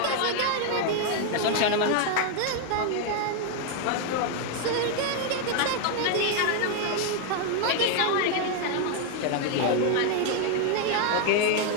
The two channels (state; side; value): different; both; correlation 0.01